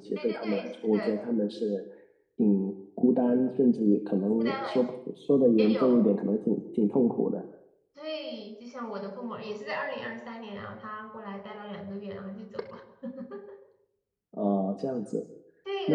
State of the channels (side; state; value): both; identical; correlation 1.00